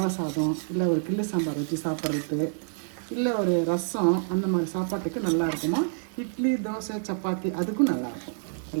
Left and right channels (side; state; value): left; silent; digital silence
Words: சாதம், இல்லை ஒரு கிள்ளு சாம்பார் ஊற்றி சாப்பிட்றது, இல்லை ஒரு ரசம், அந்த மாதிரி சாப்பாட்டுக்கு நல்லா இருக்குமா. இட்லி, தோசை, சப்பாத்தி அதுக்கும் நல்லாயிருக்கும்.